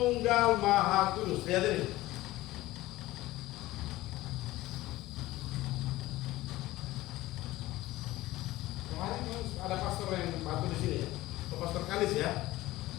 Maha Kudus. Lihat ini. Ada pastor yang bantu di sini ya, pastor Kalis ya,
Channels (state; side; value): quieter; right; 17.5 dB